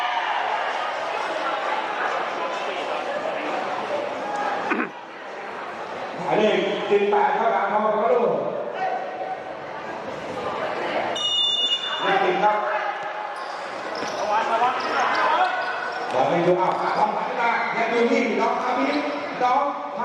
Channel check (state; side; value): identical; both; correlation 1.00